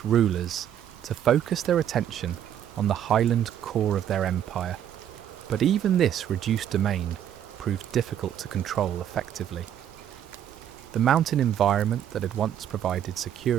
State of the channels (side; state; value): left; quieter; 10.1 dB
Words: rulers to focus their attention on the highland core of their empire, but even this reduced domain proved difficult to control effectively. The mountain environment that had once provided